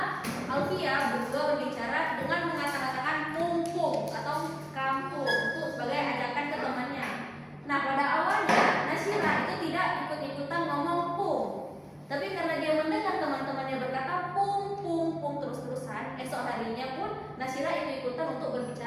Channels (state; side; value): identical; both; correlation 1.00